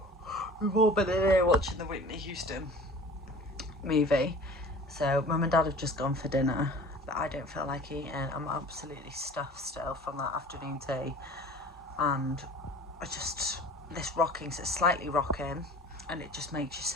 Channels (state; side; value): normal; both; correlation 0.43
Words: all been in here watching the Whitney Houston movie. So Mum and Dad have just gone for dinner, but I don't feel like eating. I'm absolutely stuffed still from that afternoon tea, and this rocking, so it's slightly rocking, and it just makes you